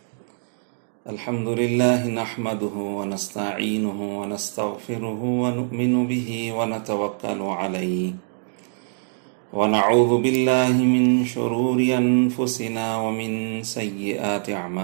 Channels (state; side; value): silent; left; digital silence